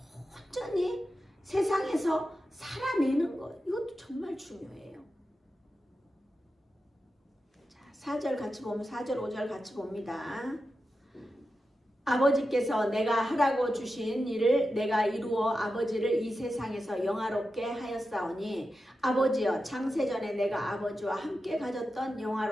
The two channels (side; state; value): both; normal; correlation 0.91